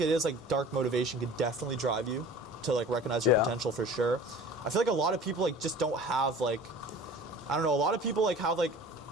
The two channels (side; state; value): both; normal; correlation 0.42